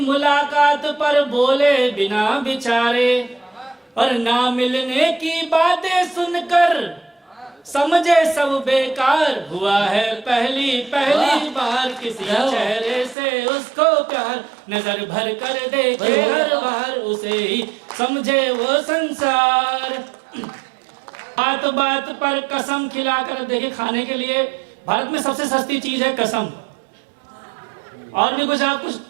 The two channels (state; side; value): drops out; left; at 13.2 s